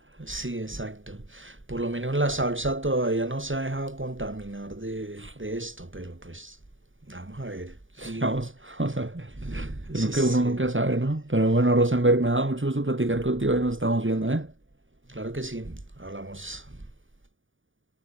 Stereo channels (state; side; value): late; left; 0.57 ms